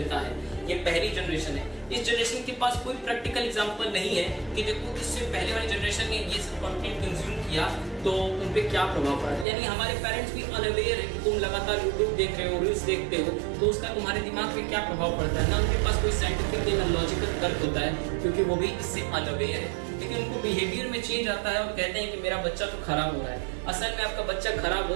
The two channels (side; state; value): left; drops out; at 9.5 s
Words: है। ये पहली जनरेशन है। इस जनरेशन के पास कोई प्रैक्टिकल एग्जांपल नहीं है कि देखो इससे पहले वाली जनरेशन ने ये सब कंटेंट कंज्यूम किया तो उन पे क्या प्रभाव पड़ा। यानी हमारे पेरेंट्स भी अनअवेयर है कि तुम लगातार यूट्यूब देख रहे हो, रील्स देखते हो, तो उसका तुम्हारे दिमाग पे क्या प्रभाव पड़ता है ना। उनके पास कोई साइंटिफिक या लॉजिकल तर्क होता है, क्योंकि वो भी इससे अनअवेयर है। लेकिन उनको बिहेवियर में चेंज आता है और कहते हैं कि मेरा बच्चा तो खराब हो रहा है। असल में आपका बच्चा खराब